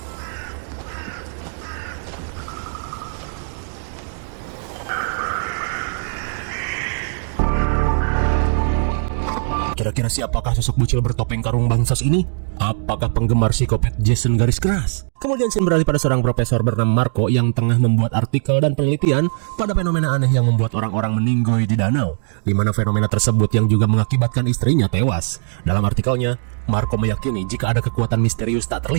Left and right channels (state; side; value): silent; left; digital silence